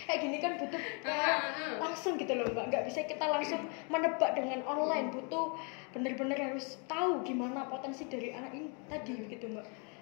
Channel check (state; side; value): quieter; right; 36.1 dB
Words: Kayak gini kan butuh langsung gitu loh Mbak, nggak bisa kita langsung menebak dengan online, butuh benar-benar harus tahu gimana potensi dari anak ini tadi begitu Mbak.